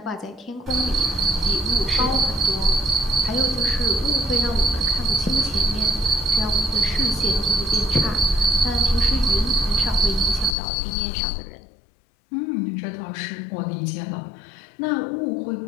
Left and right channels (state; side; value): drops out; right; at 10.6 s